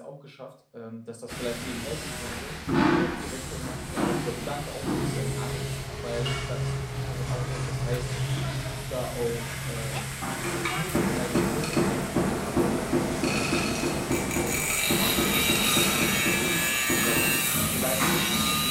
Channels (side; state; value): both; identical; correlation 1.00